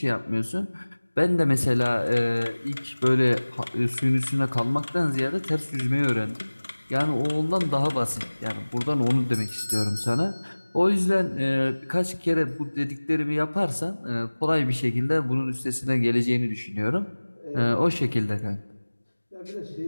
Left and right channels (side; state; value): both; inverted; correlation -1.00